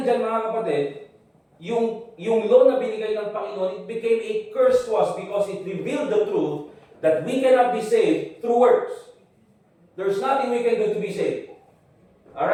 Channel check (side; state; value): both; identical; correlation 1.00